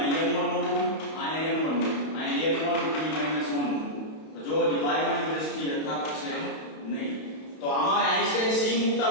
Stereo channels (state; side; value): late; right; 32 ms